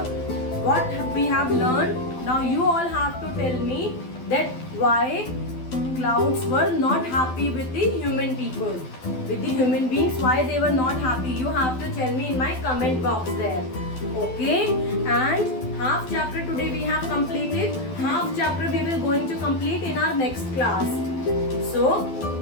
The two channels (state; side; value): late; right; 12 ms